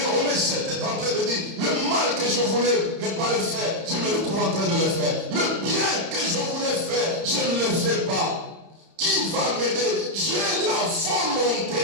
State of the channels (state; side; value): late; left; 30 ms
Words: Romains 7 est en train de dire, le mal que que je voulais ne pas le faire, je me retrouve en train de le faire. Le bien que je voulais faire, je ne le fais pas. Qui va m'aider? J'ai la volonté